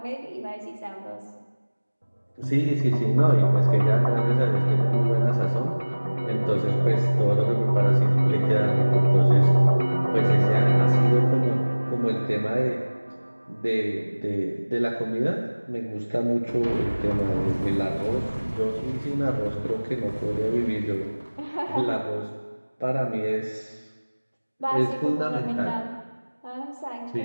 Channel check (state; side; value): inverted; both; correlation -1.00